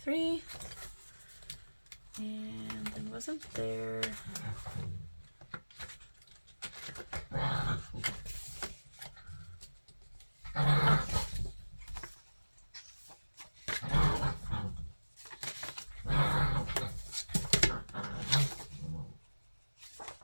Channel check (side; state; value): both; inverted; correlation -1.00